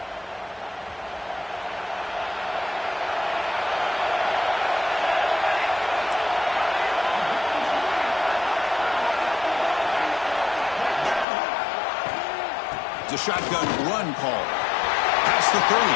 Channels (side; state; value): right; drops out; at 11.2 s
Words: A shotgun run call. Past the 30.